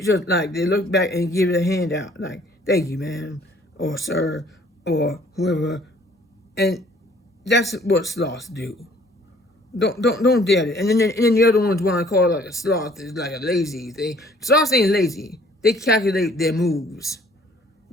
just like they look back and give it a hand out like thank you ma'am or sir or whoever, and that's what sloths do. Don't dare it. And then the other ones want to call it like a sloth is like a lazy thing. Sloths ain't lazy. They calculate their moves.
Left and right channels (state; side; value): normal; both; correlation 0.57